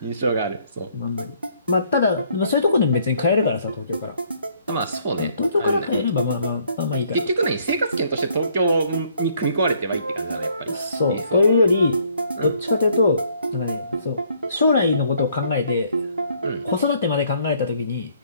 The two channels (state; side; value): inverted; both; correlation -0.65